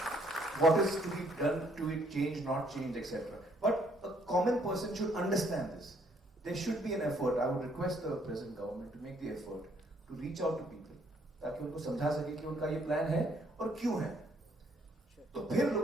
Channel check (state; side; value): normal; both; correlation 0.66